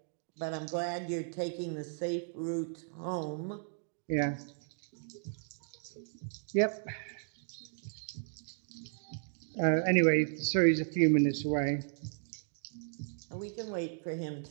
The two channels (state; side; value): silent; left; digital silence